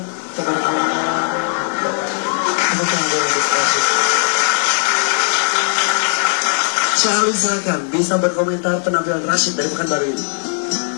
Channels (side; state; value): right; silent; 56 dB below the other